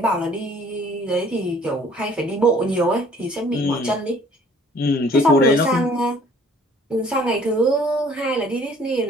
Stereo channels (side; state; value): both; normal; correlation 0.56